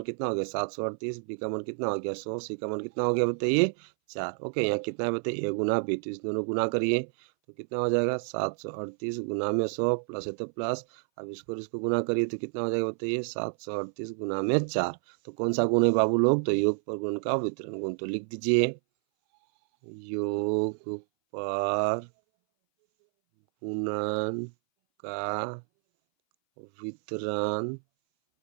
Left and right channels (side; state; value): left; silent; 58 dB below the other